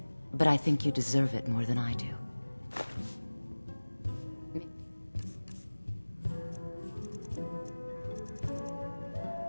but I think you deserve it more than I do.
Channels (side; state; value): both; inverted; correlation -1.00